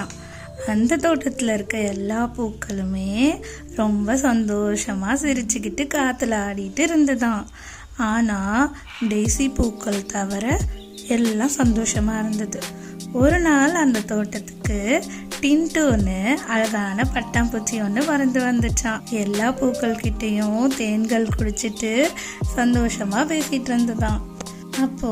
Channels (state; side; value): identical; both; correlation 1.00